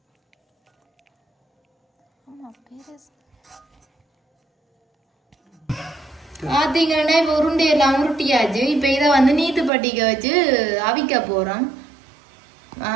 பார்த்தீங்கன்னா இப்போ உருண்டையெல்லாம் உருட்டியாச்சு. இப்போ இதை வந்து நீத்து பட்டிக்க வச்சு அவிக்க போகிறோம்.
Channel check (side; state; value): left; drops out; at 9.7 s